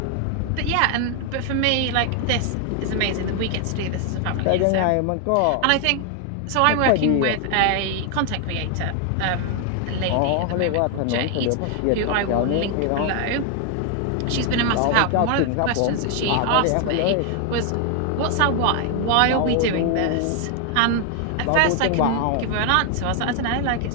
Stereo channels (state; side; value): different; both; correlation 0.00